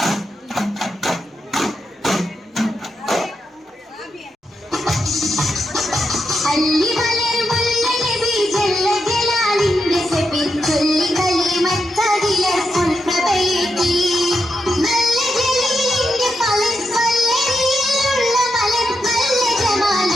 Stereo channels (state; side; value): normal; both; correlation 0.84